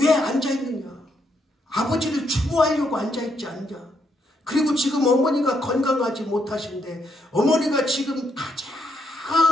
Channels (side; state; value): both; normal; correlation 0.76